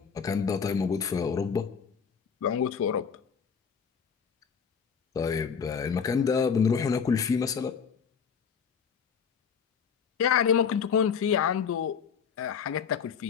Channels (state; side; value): quieter; right; 6.7 dB